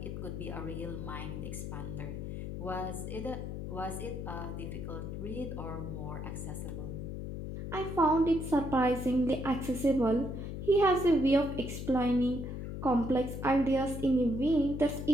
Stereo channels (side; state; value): left; noise; hum, 6 dB below the sound